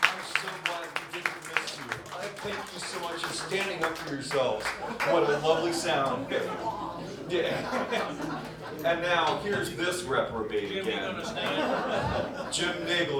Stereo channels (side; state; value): both; identical; correlation 1.00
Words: I'm so glad we didn't miss you. Thank you so much. standing up for yourselves. What a lovely sound. Yeah. And now, here's this reprobate again. Jim